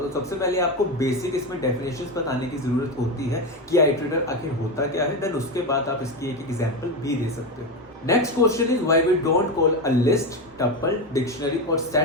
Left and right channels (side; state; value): both; normal; correlation 0.15